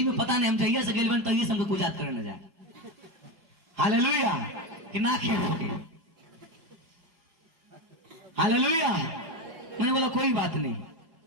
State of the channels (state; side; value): late; left; 4.9 ms